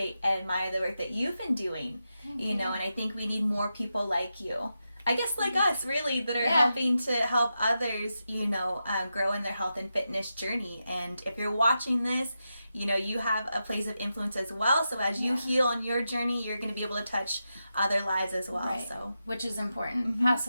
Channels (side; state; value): both; inverted; correlation -0.88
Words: and admire the work that you've been doing. You know, and I think we need more people like you. I guess like us, really, that are helping to help others, you know, grow in their health and fitness journey. And if you're watching this, you know, you have a place of influence as well. So as you heal on your journey, you're going to be able to touch other lives as well. Right. So, which is important. Pass